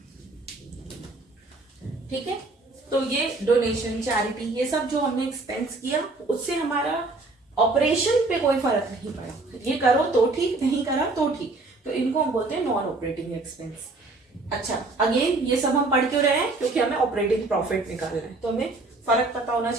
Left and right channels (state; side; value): quieter; left; 3.3 dB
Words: ठीक है। तो ये डोनेशन, चैरिटी, ये सब जो हमने एक्सपेंस किया उससे हमारा ऑपरेशन पे कोई फर्क नहीं पड़ा, ये करो तो ठीक, नहीं करा तो ठीक, तो इनको हम बोलते हैं नॉन ऑपरेटिंग एक्सपेंस। अच्छा, अगेन ये सब हम पढ़ क्यों रहे हैं, क्योंकि हमें ऑपरेटिंग प्रॉफिट निकालना है, तो हमें फर्क पता होना